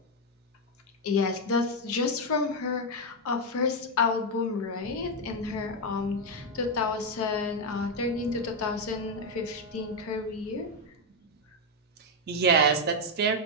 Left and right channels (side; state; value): both; normal; correlation 0.04